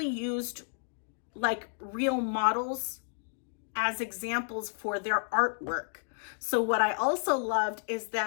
used like real models as examples for their artwork. So what I also loved is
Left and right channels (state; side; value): silent; right; digital silence